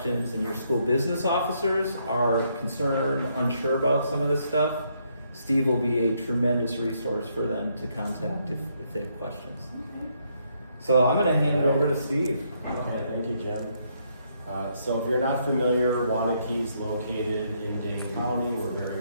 and your school business officers are concerned, unsure about some of this stuff, Steve will be a tremendous resource for them to contact if they have questions. So I'm going to hand it over to Steve. Okay, thank you, Jim. So if you're not familiar, Wanakee's located in Dane County. We're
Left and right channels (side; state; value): both; inverted; correlation -0.73